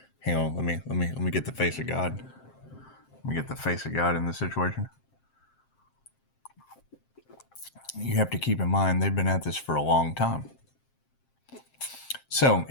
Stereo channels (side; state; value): right; late; 7.6 ms